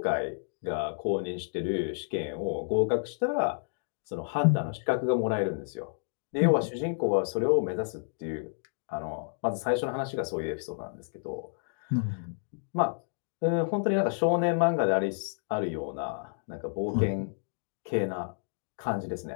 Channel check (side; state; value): right; silent; digital silence